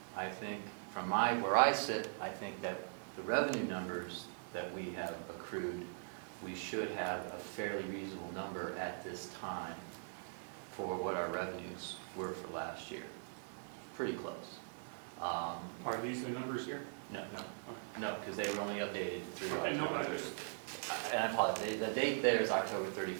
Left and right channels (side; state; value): left; silent; digital silence